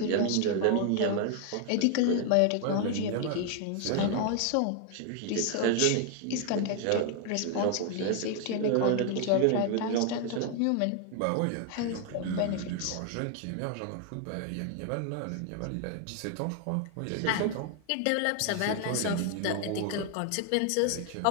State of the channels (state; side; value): different; both; correlation 0.00